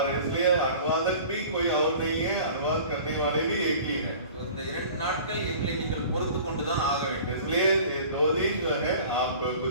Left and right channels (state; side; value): inverted; both; correlation -0.44